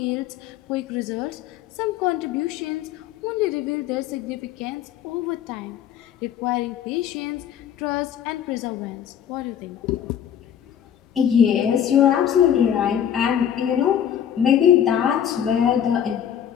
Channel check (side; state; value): right; quieter; 9.4 dB